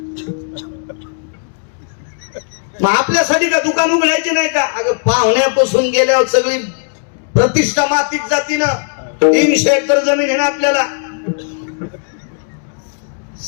मग आपल्यासाठी का दुकान उघडायचे नाही का? अगं पाहुण्यापासून गेल्यावर सगळी प्रतिष्ठा मातीत जाती ना. 300 एकर जमीन आहे ना आपल्याला.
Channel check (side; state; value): right; silent; 65 dB below the other